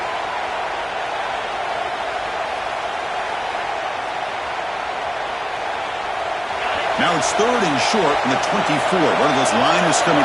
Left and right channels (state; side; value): identical; both; correlation 1.00